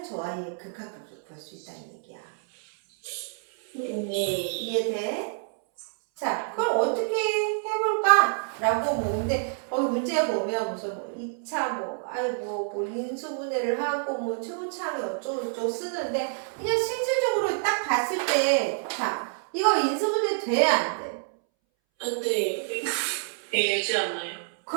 저 아이의 극한값을 구할 수 있다는 얘기야. 네. 이해돼? 자, 그럼 어떻게 해볼까? 라고 근데 문제 보면 무슨 2차 아이고 인수분해를 하고 최고차항이 어쩌고저쩌고 쓰는데 그냥 실질적으로 딱 봤을 때 자, 이거 인수분해 돼야 안 돼? 안 돼. 되지 않나요?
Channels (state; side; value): silent; left; 60 dB below the other